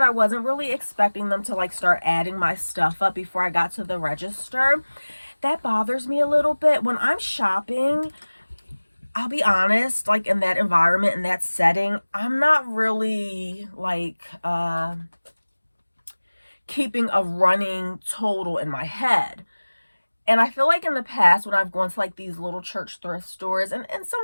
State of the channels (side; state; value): both; inverted; correlation -1.00